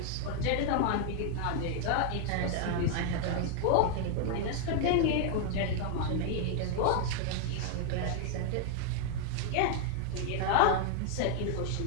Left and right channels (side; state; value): both; different; correlation 0.00